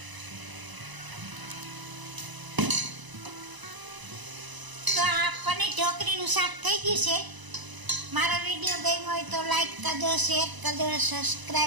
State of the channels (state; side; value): late; left; 1.0 ms